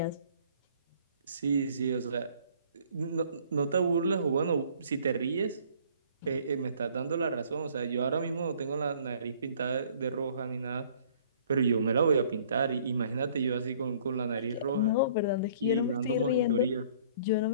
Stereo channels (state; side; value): inverted; both; correlation -0.56